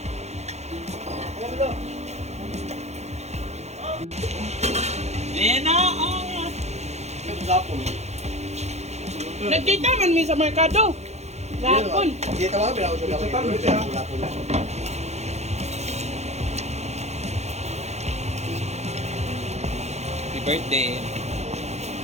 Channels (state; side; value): late; left; 0.32 ms